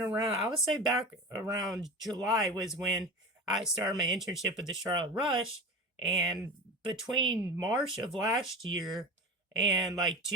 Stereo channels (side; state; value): both; normal; correlation 0.30